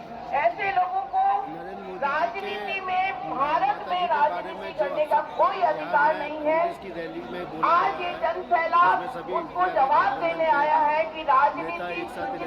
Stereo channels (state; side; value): identical; both; correlation 1.00